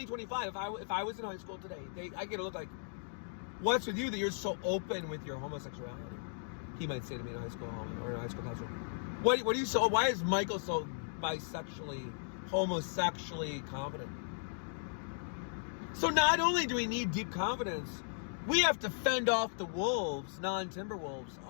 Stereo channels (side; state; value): right; silent; digital silence